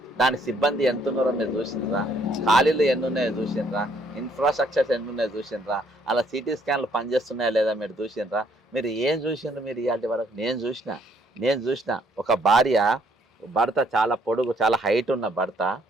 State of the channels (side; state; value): both; normal; correlation 0.67